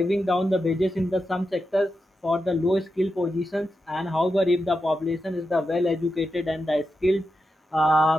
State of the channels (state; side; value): normal; both; correlation 0.88